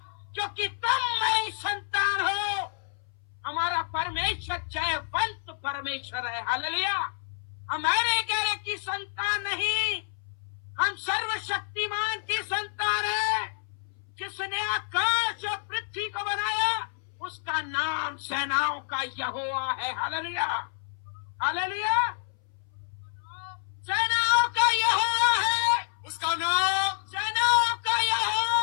क्योंकि तुम मेरी संतान हो। हमारा परमेश्वर जयवंत परमेश्वर है। हालेलुया। हमारे गैर की संतान नहीं, हम सर्वशक्तिमान की संतान है। जिसने आकाश और पृथ्वी को बनाया उसका नाम सेनाओं का यहोवा है। Hallelujah, hallelujah. सेनाओं का यहोवा है, उसका नाम सेनाओं का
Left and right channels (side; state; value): right; silent; 59 dB below the other